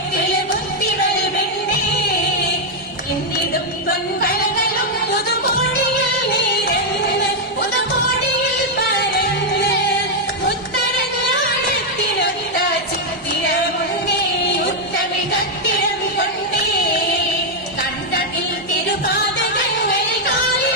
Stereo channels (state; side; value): normal; both; correlation -0.01